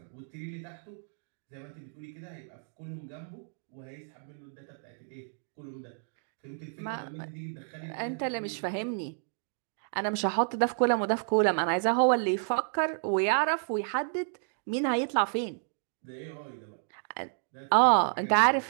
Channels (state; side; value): silent; left; digital silence